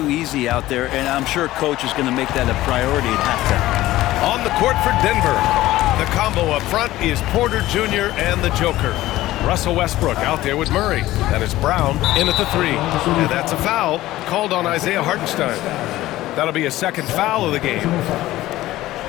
easy out there, and I'm sure Coach is going to make that a priority at halftime. On the court for Denver, the combo up front is Porter Jr. and the Joker. Russell Westbrook out there with Murray. That is Brown in at the 3. And that's a foul called on Isaiah Hartenstein. That'll be a second foul of the game.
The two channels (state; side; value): quieter; right; 16.1 dB